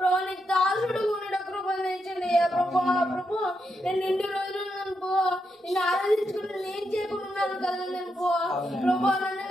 నీ దాసుడు ఉండడం కృపను తెచ్చిందయ్యా ప్రభా ప్రభా. నేను ఇన్ని రోజులు నిన్ను ఆరాధించుకుని నేను చేయకున్నాను కదా అనుకో ప్రభా. నన్ను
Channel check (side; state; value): both; normal; correlation 0.83